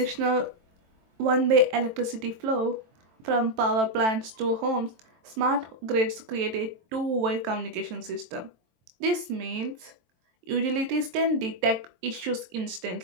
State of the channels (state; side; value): late; left; 23 ms